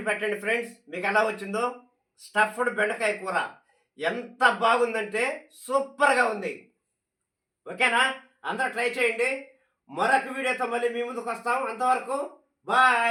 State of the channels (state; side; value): identical; both; correlation 1.00